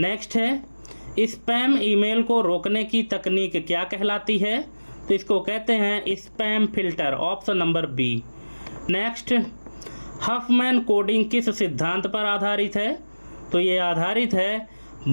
है स्पैम ईमेल को रोकने की तकनीक क्या कहलाती है? तो इसको कहते हैं spam filter, option number B. Next, Huffman coding किस सिद्धांत पर आधारित है? तो ये आधारित है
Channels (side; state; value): both; inverted; correlation -1.00